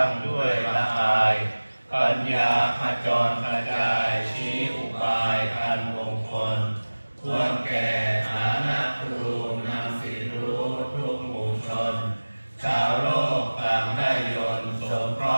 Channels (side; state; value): both; inverted; correlation -1.00